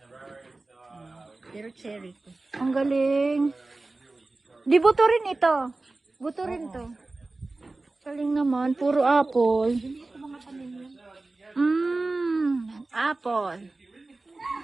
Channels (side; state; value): left; quieter; 3.2 dB